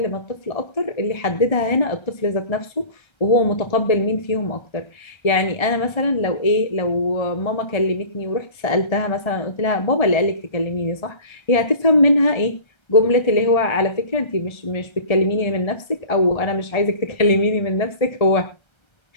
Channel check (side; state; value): right; late; 1.3 ms